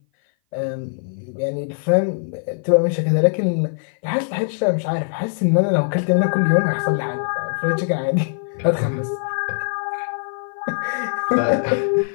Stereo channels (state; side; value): silent; right; 57 dB below the other